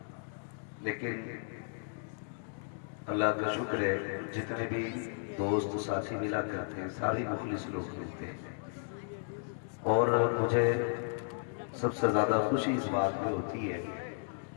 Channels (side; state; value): right; silent; digital silence